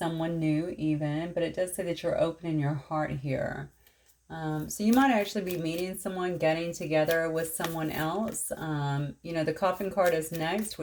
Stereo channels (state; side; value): identical; both; correlation 1.00